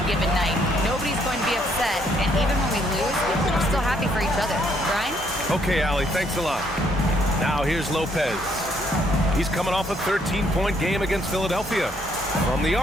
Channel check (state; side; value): normal; both; correlation 0.69